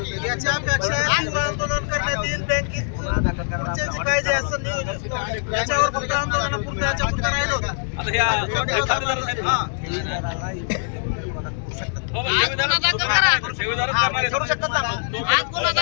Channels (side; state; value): right; silent; 64 dB below the other